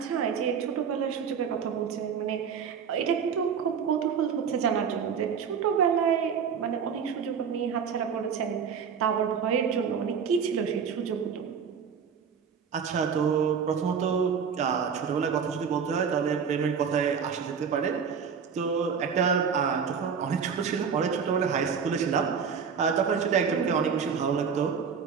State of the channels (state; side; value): quieter; left; 6.7 dB